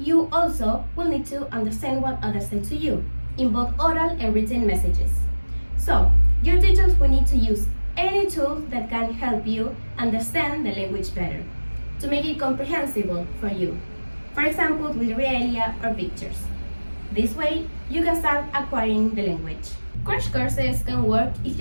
also will need to understand what others say to you, in both oral and written messages. So, your teachers will need to use any tool that can help you understand the language better, to make it comprehensible for you. For example, with realia or pictures. This way, you can start acquiring the language. Crash courses can work if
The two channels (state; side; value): inverted; both; correlation -1.00